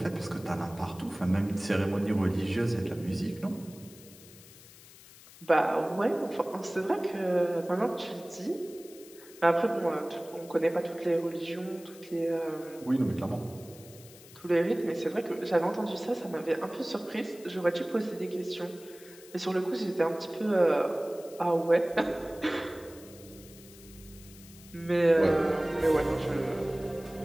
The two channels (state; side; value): noise; left; hiss, 21 dB below the sound